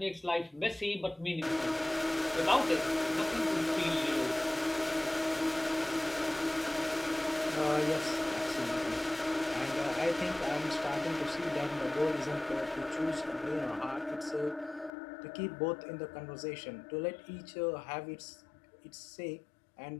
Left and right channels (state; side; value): drops out; right; at 14.9 s